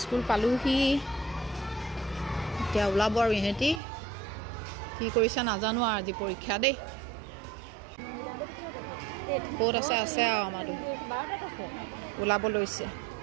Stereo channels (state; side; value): drops out; left; at 3.8 s